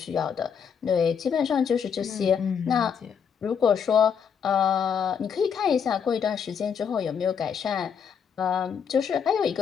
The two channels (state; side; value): quieter; right; 7.1 dB